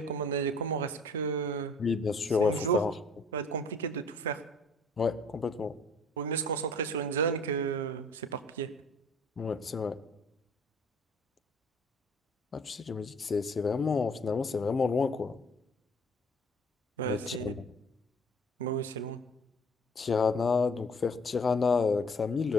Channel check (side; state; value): both; normal; correlation 0.53